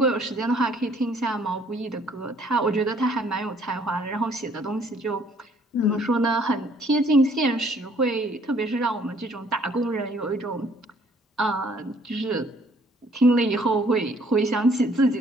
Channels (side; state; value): both; normal; correlation 0.61